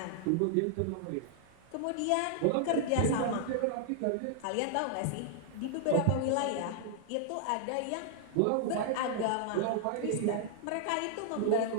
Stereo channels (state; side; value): different; both; correlation -0.01